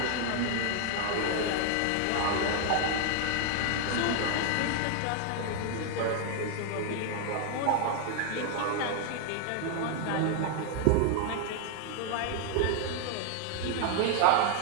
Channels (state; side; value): different; both; correlation 0.00